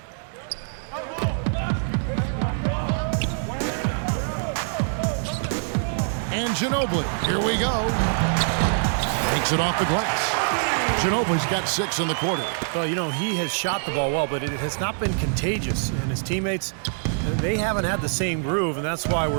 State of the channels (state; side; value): silent; left; digital silence